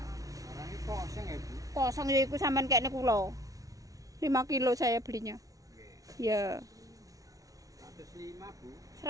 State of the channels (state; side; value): late; left; 0.17 ms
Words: Orangnya kosong ya Bu? Kosong ya iku sampean kene kula. 5 kilo saya belinya. Ya. 105 Bu.